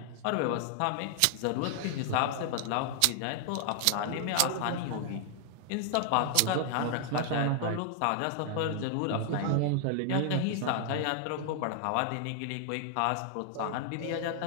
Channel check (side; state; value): both; different; correlation 0.00